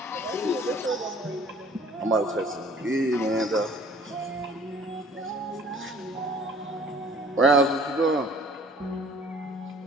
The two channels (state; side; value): normal; both; correlation 0.53